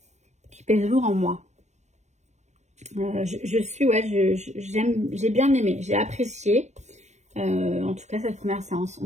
Qui pèsent lourd en moi. J'ai bien aimé, j'ai apprécié. En tout cas, cette première séance,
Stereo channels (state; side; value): late; left; 0.34 ms